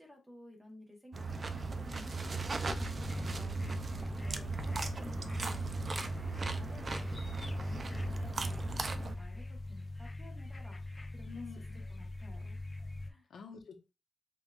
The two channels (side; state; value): both; normal; correlation 0.90